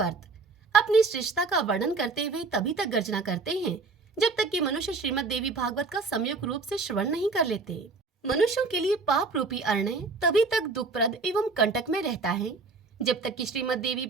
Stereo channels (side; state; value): left; quieter; 4.0 dB